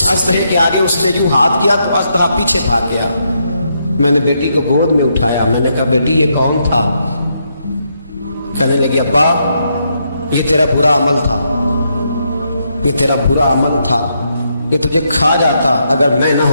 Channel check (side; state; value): both; inverted; correlation -0.78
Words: اژدہے کے آگے اس نے یوں ہاتھ کیا تو اژدہا پیچھے بھاگ گیا. میں نے بیٹی کو گود میں اٹھایا, میں نے کہا بیٹی یہ کون تھا؟ کہنے لگی ابا یہ تیرا برا عمل تھا, یہ تیرا برا عمل تھا, یہ تجھے کھا جاتا اگر میں نہ